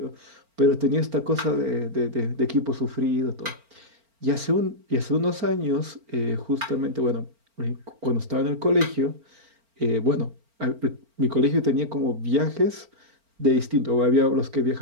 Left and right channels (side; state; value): left; late; 4.4 ms